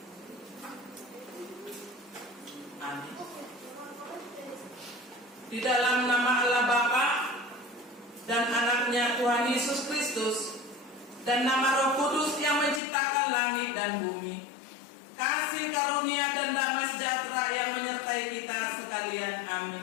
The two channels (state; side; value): drops out; right; at 12.8 s